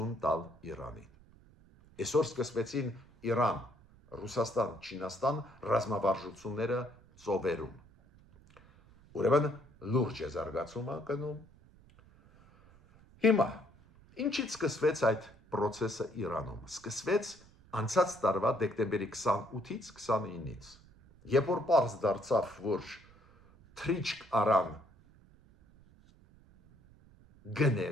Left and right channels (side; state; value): right; noise; rumble, 26 dB below the sound